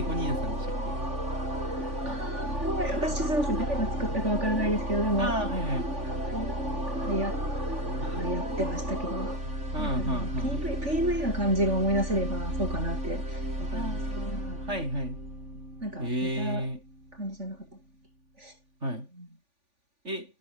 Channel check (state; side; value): late; left; 3.5 ms